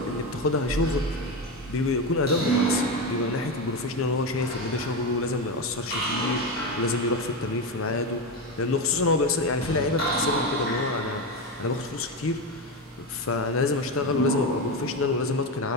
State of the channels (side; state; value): both; normal; correlation 0.16